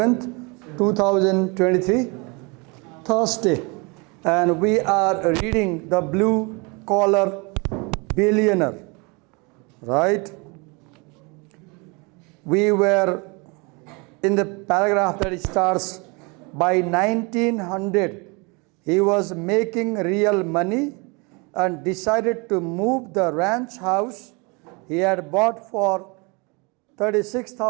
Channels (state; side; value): quieter; left; 29.4 dB